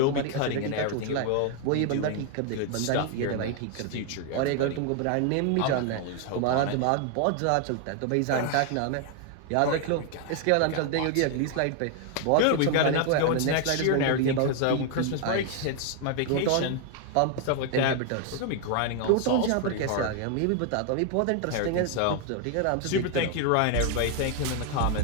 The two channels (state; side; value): different; both; correlation 0.00